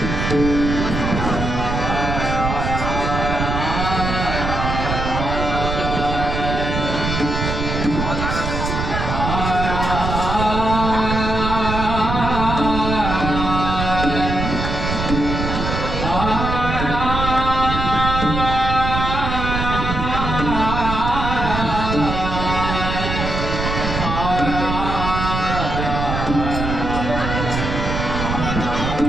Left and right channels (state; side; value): noise; right; rumble, 3 dB below the sound